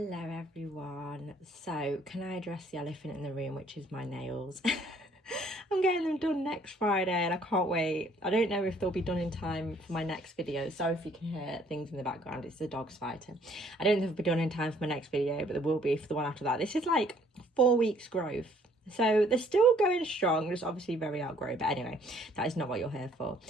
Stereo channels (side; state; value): both; normal; correlation 0.62